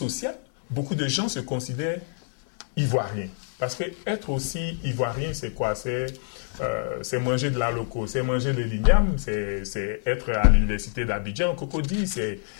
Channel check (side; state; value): right; silent; 61 dB below the other